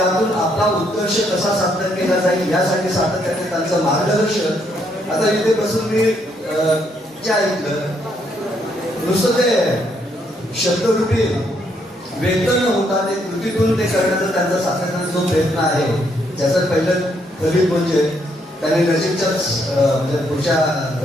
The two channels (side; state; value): both; normal; correlation 0.73